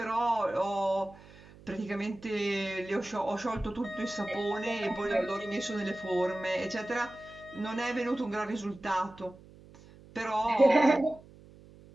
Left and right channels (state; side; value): noise; right; hum, 22 dB below the sound